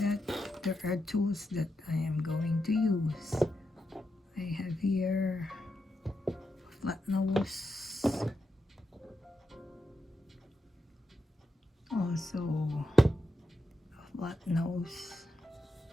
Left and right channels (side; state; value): both; normal; correlation 0.86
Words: there are tools that I am going to use. I have here a flat nose, also a flat nose,